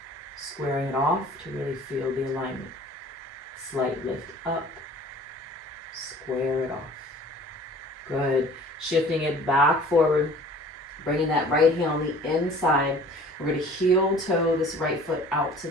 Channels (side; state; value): both; normal; correlation 0.48